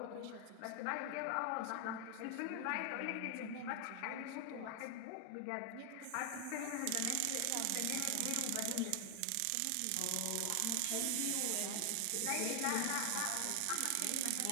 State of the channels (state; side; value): different; both; correlation 0.00